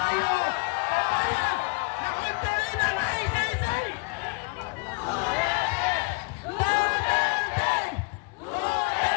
papayag na kontrolin ng ICC!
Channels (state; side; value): quieter; right; 30.6 dB